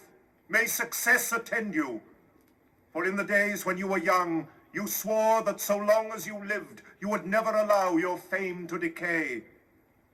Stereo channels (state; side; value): identical; both; correlation 1.00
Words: may success attend you. For in the days when you were young, you swore that so long as you lived, you would never allow your fame to decay.